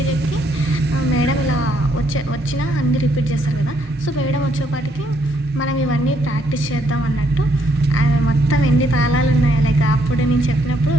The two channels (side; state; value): both; normal; correlation 0.71